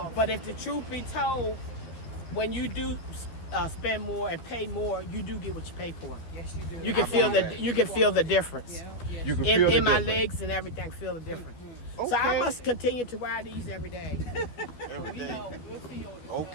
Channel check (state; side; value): late; right; 12 ms